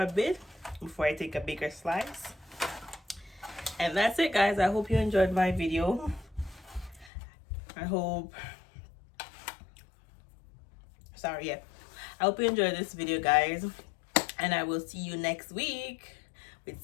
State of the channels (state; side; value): drops out; right; at 7.1 s